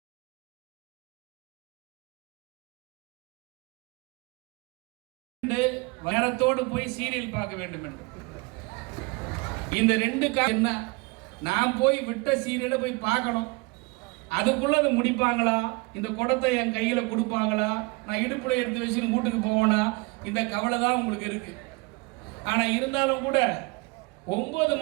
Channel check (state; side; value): quieter; left; 27.0 dB